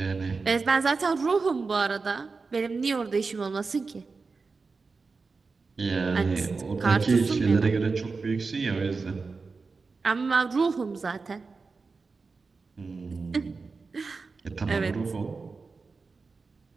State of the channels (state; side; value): quieter; left; 4.4 dB